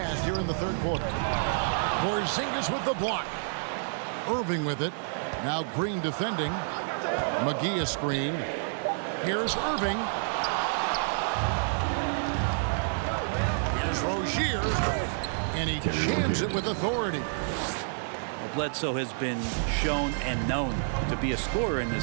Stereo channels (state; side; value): silent; left; digital silence